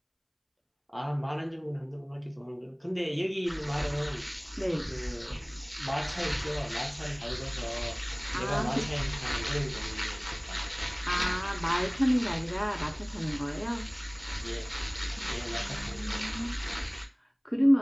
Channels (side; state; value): both; identical; correlation 1.00